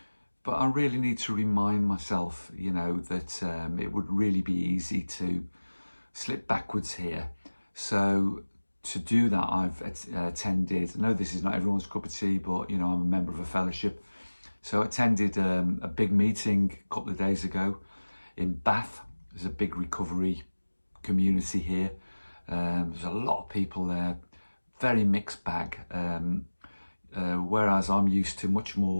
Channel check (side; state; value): both; inverted; correlation -1.00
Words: But I really need to remind myself, that it would really be easy to slip backwards here. So to do that, I've attended, I know this is not everyone's cup of tea, but I'm a member of a fellowship. So I attended a big meeting a couple of days ago in Bath. There's a big recovery community here. There's a lot of people there, very mixed bag. Whereas I'm used to much